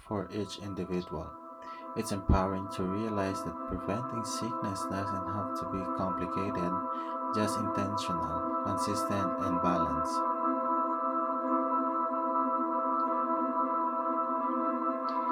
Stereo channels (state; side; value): identical; both; correlation 1.00